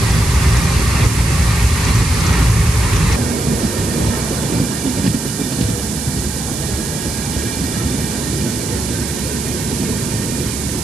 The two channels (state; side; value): noise; right; hiss, 6 dB below the sound